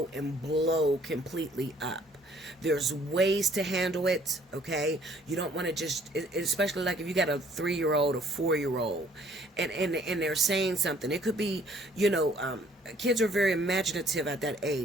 and blow completely up. There's ways to handle it, okay? You don't want to just, especially like if you got a 3-year-old or 4-year-old and they're saying something. It could be, you know, kids are very imaginative at that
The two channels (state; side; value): normal; both; correlation 0.60